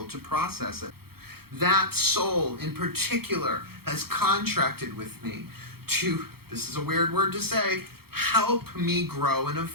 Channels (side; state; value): left; late; 0.95 ms